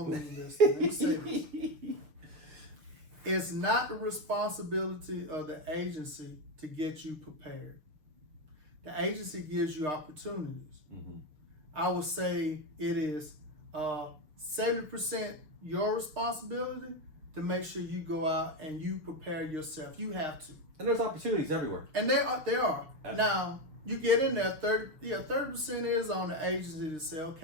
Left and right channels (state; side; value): late; left; 6.6 ms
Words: say this. It's not the responsibility of the agency to get you prepared. The agency gives you opportunities. Mm-hmm. I would say it is 70% your responsibility to make sure you go out and you prepare yourself. You have to. And there's opportunities everywhere. And there are. Now, you get in there, 30% is on the agency to say,